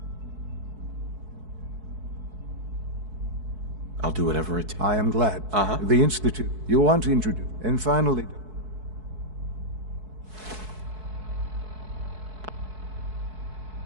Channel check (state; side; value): late; left; 4.6 ms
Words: I'll do whatever it takes. I am glad. The Institute. You want to introduce... And finally...